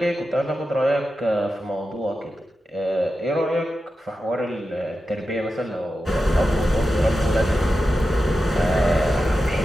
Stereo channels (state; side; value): normal; both; correlation 0.91